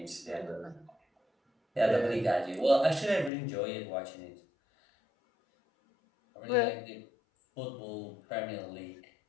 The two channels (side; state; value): right; drops out; at 3.3 s